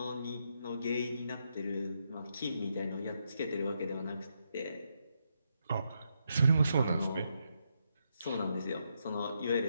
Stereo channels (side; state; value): both; inverted; correlation -0.80